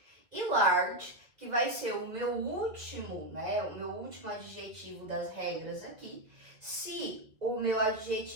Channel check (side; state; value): left; late; 2.2 ms